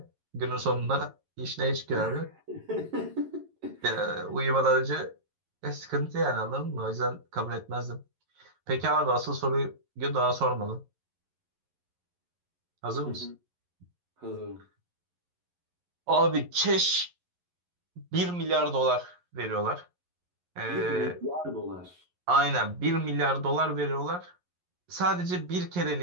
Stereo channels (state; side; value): late; left; 11 ms